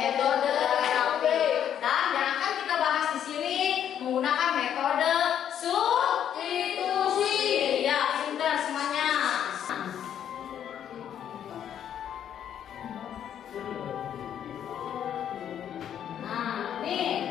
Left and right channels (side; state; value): right; quieter; 9.6 dB